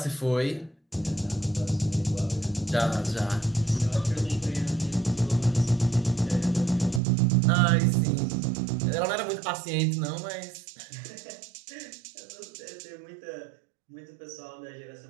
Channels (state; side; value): drops out; left; at 7.0 s